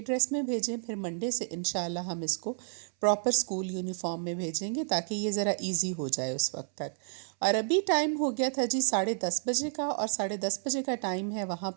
میں بھیجیں، پھر منڈے سے انشاءاللہ ہم اس کو پراپر اسکول یونیفارم میں بھیجیں گے تاکہ یہ ذرا ایزی ہو جائے اس وقت تک۔ اور ابھی ٹائم ہو گیا تھا جی 10:30 بجے کا، اور 10:30 بجے کا ٹائم ہے وہاں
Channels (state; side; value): silent; left; 57 dB below the other